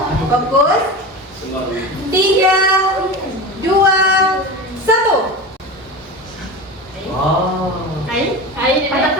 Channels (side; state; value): both; normal; correlation 0.27